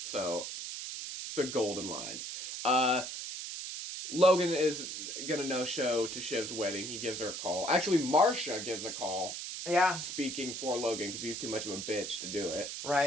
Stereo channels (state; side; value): noise; right; hiss, 6 dB below the sound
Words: So, it's the golden line. Logan is gonna no-show to Shiv's wedding. He gives her a call. Actually, Marcia gives a call. Yeah. Speaking for Logan, because he's too much of a bitch to do it.